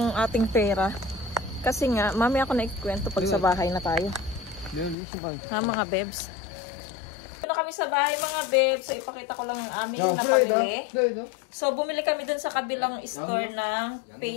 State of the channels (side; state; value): right; drops out; at 5.0 s